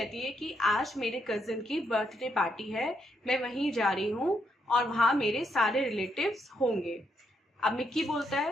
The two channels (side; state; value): both; normal; correlation 0.77